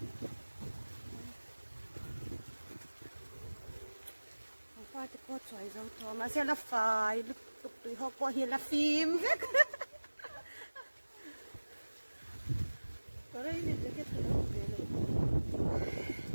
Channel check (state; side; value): inverted; both; correlation -1.00